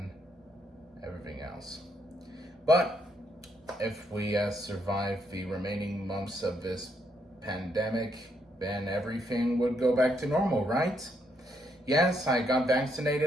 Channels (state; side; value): normal; both; correlation 0.75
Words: everything else. But if we survive the remaining months of this pandemic, then everything would go back to normal, right? Yes, I got